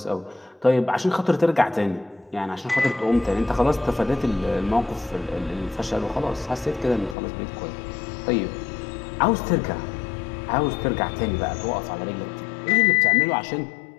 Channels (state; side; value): drops out; right; at 7.2 s